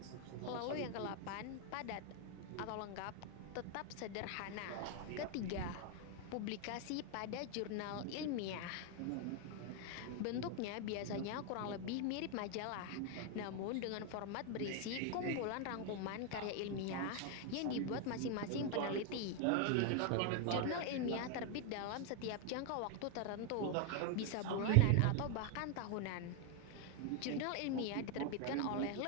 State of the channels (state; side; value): different; both; correlation 0.01